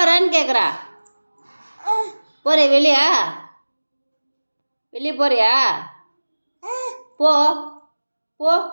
கேட்குறா. போறியா வெளியா? வெளியே போறியா? போ போ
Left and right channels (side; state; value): both; inverted; correlation -1.00